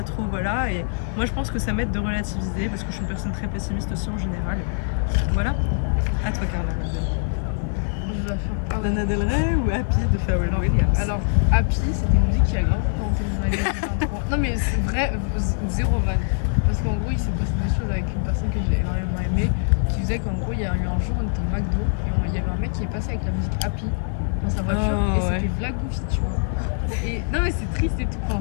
trop... Voilà. Et moi, je pense que ça m'aide de relativiser parce que je suis une personne très pessimiste aussi en général. Voilà. À toi, Carla. Je vais faire... Lana Del Rey ou Happy de Pharrell Williams? Alors, Happy, c'était une musique qui a grave représenté mon année 2023. Non, mais c'est vrai, zéro van. Parce qu'en gros, il s'est passé des choses avec une personne que j'ai énormément aimée, qui faisait qu'en gros, il y a eu un jour, on était au McDo et il y avait un mec qui est passé avec la musique Happy dans sa voiture Oh, et ouais. c'était Vla Goofy, tu vois. Et non, mais c'est triste et tout, enfin,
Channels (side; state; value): right; silent; digital silence